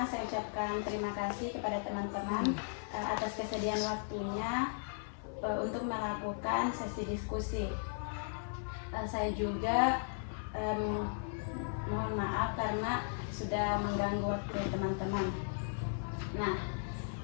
saya ucapkan terima kasih kepada teman-teman atas kesediaan waktunya untuk melakukan sesi diskusi. Saya juga mohon maaf karena sudah mengganggu waktu teman-teman. Nah,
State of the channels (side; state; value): right; silent; 53 dB below the other